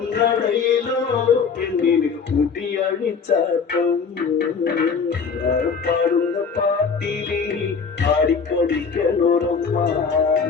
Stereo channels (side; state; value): right; quieter; 5.7 dB